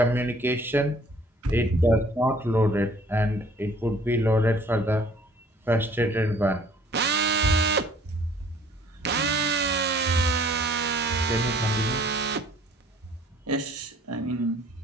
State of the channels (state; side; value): normal; both; correlation 0.56